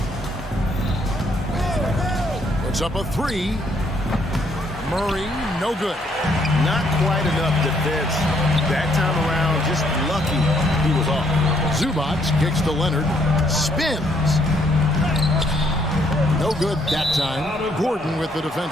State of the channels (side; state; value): both; normal; correlation 0.69